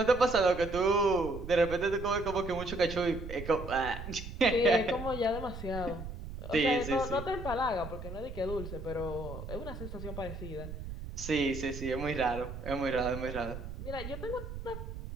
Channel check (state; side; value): noise; right; rumble, 9 dB below the sound